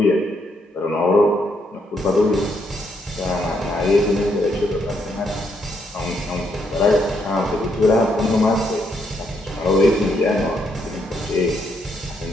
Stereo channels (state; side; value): normal; both; correlation 0.75